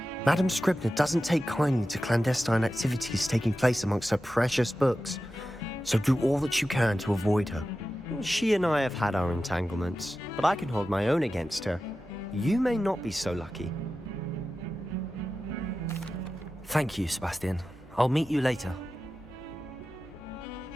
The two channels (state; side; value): normal; both; correlation 0.93